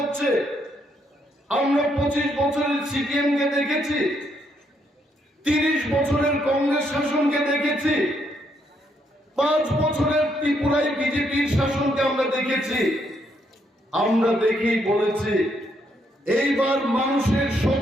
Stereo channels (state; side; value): normal; both; correlation 0.75